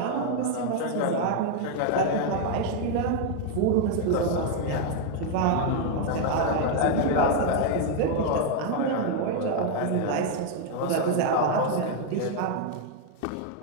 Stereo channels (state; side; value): different; both; correlation 0.00